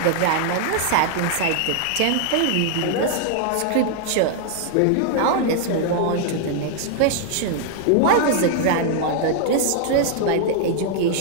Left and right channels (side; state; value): both; different; correlation 0.00